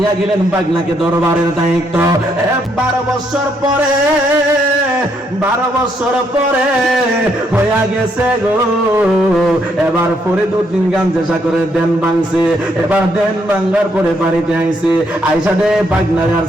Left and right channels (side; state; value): both; normal; correlation 0.74